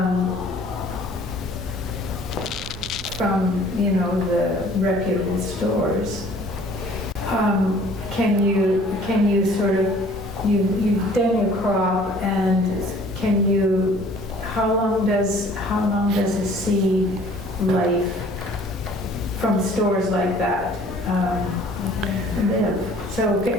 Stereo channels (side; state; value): both; normal; correlation 0.53